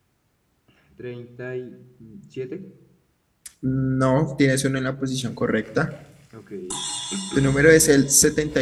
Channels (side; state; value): both; identical; correlation 1.00